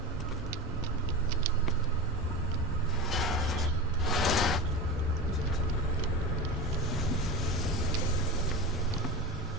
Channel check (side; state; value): both; normal; correlation 0.25